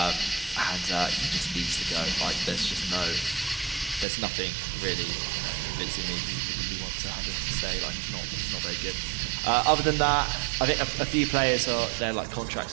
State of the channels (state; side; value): drops out; left; at 4.0 s